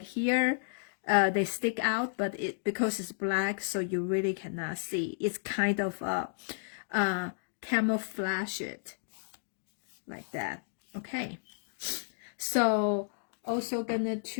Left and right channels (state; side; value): silent; right; digital silence